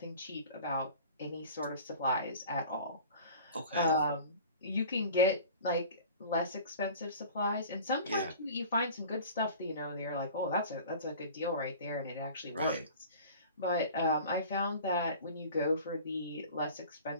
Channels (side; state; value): both; inverted; correlation -0.42